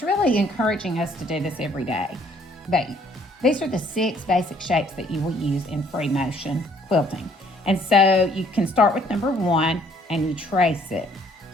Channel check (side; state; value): both; normal; correlation 0.62